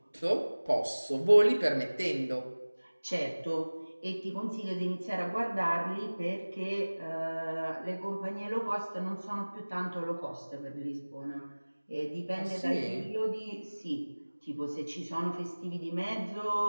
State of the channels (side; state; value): both; inverted; correlation -1.00